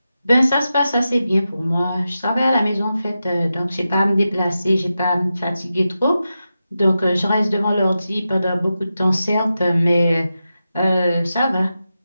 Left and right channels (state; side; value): inverted; both; correlation -0.91